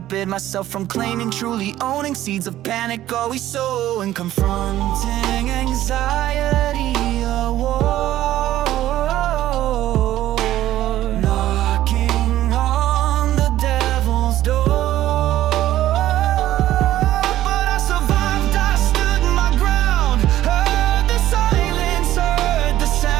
myself from claiming, truly owning. Seeds of panic always sowing, confronting anxiety, a war.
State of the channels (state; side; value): quieter; left; 13.7 dB